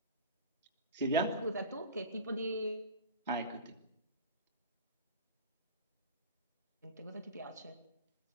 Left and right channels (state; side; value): inverted; both; correlation -0.32